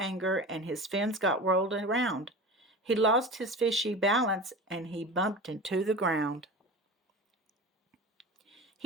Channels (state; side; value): normal; both; correlation 0.33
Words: and his fins got whirled around. He lost his fishy balance, and he bumped into the ground.